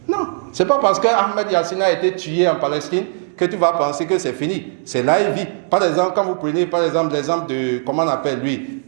Non, c'est pas parce que Ahmed Yassine a été tué en Palestine que tu vas penser que c'est fini. C'est là il vit. Par exemple, quand vous prenez par exemple l'exemple de, comment on appelle lui,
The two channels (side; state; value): left; silent; digital silence